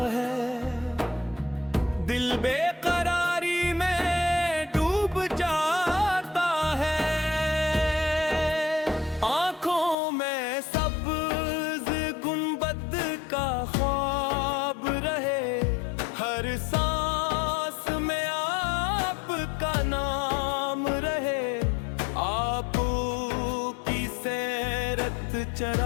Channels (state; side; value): drops out; right; at 10.0 s